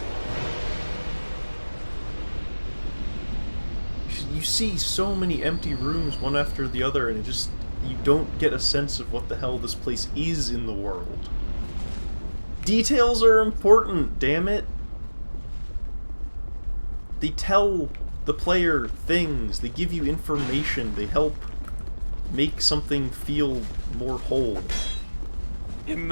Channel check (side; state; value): both; inverted; correlation -1.00